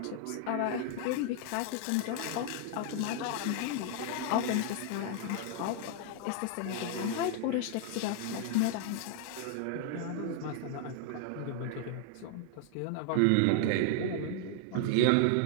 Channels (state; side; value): different; both; correlation 0.00